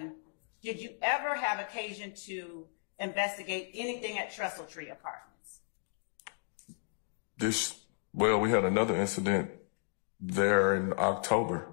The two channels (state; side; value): silent; right; digital silence